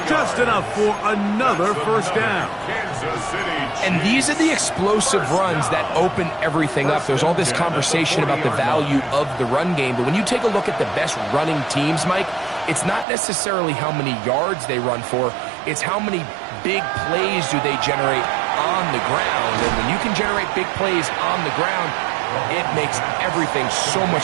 Just enough for another 1st down. And these are the explosive runs that open everything up. There's all this conversation about the value of the run game, but when you take a look at the best running teams, Mike, it's not necessarily how many yards they run for, it's how many big plays do they generate on the ground. And when you can generate big plays on the ground, it makes everything so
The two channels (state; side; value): drops out; left; at 13.1 s